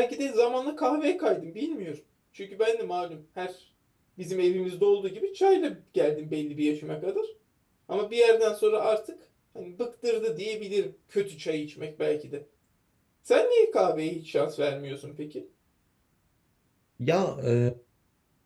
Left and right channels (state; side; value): identical; both; correlation 1.00